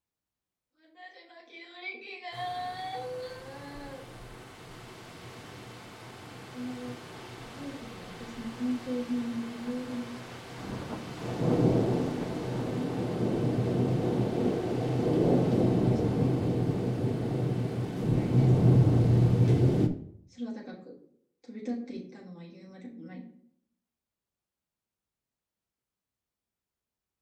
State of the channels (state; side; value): identical; both; correlation 1.00